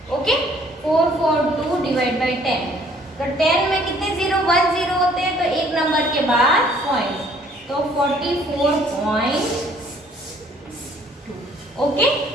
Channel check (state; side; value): normal; both; correlation 0.59